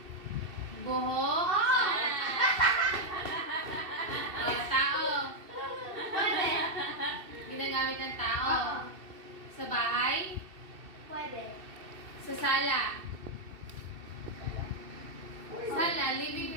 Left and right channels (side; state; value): left; late; 2.7 ms